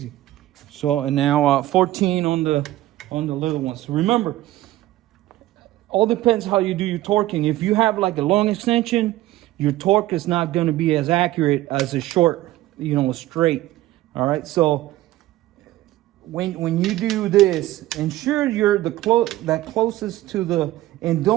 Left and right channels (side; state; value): left; quieter; 16.0 dB